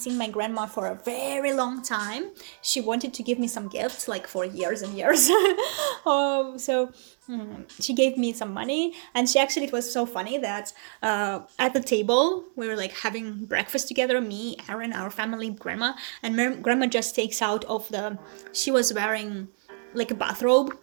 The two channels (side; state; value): left; silent; 60 dB below the other